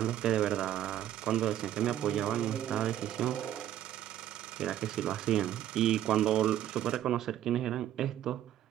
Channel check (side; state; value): left; quieter; 11.9 dB